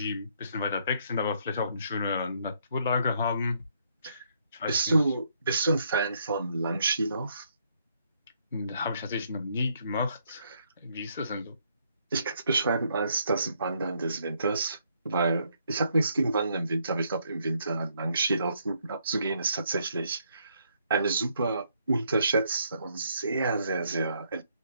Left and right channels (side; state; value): both; inverted; correlation -0.72